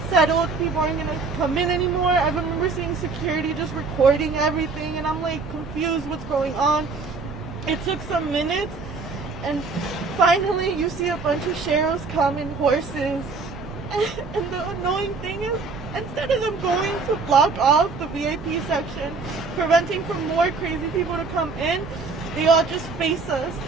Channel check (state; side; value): quieter; left; 4.3 dB